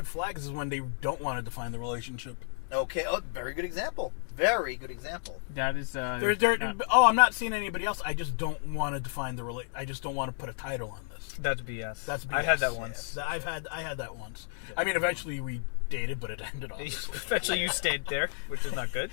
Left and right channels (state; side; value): silent; right; digital silence